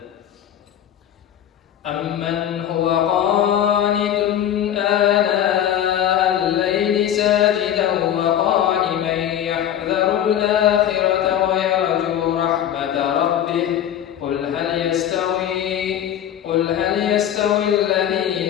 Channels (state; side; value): quieter; right; 10.4 dB